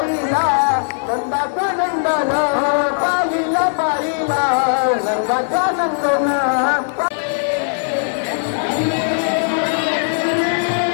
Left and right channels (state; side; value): silent; right; digital silence